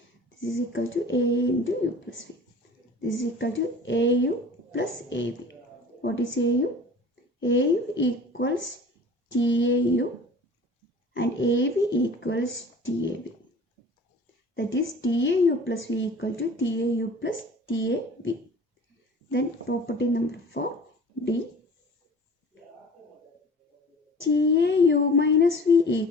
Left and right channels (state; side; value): normal; both; correlation 0.43